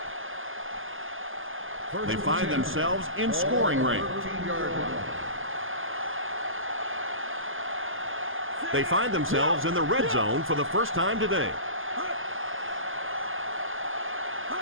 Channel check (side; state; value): left; late; 0.59 ms